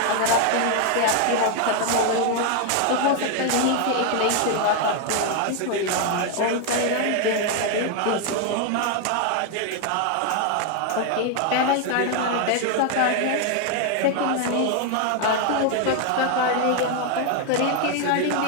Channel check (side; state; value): both; different; correlation 0.01